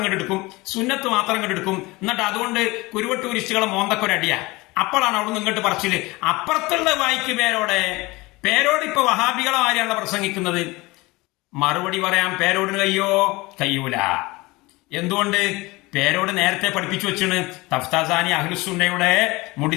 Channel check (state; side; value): quieter; right; 22.4 dB